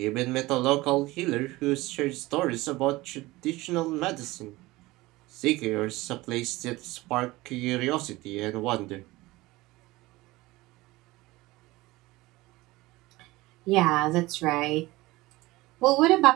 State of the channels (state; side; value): quieter; left; 19.8 dB